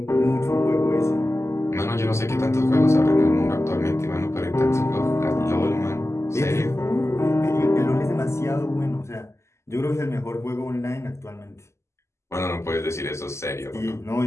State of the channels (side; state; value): right; late; 0.13 ms